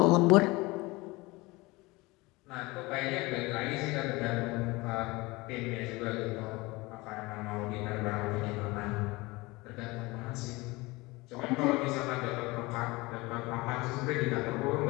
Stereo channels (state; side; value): quieter; right; 22.7 dB